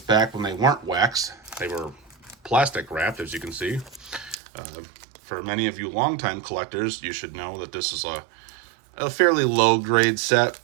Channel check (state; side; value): drops out; left; at 4.4 s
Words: when they weren't wax. They were plastic wrapped, as you can see. For many of you longtime collectors, you should know that this is a fairly low grade set,